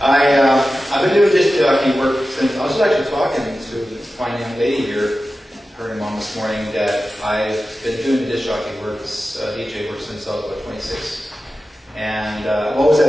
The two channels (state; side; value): normal; both; correlation 0.94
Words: been doing disc jockey work since I was actually talking to this fine young lady here, her and mom this morning, that I've been doing disc jockey work, DJ work since I was about 26, and I've always